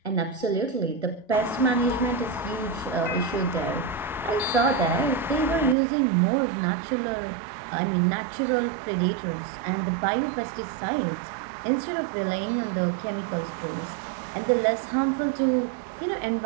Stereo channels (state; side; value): drops out; left; at 5.8 s